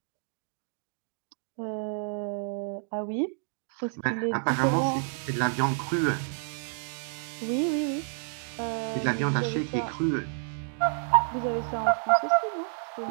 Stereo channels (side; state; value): left; silent; digital silence